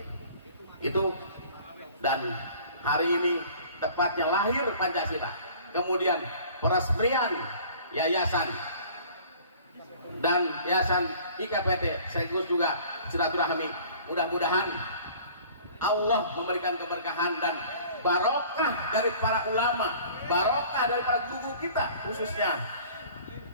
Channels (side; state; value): both; inverted; correlation -0.49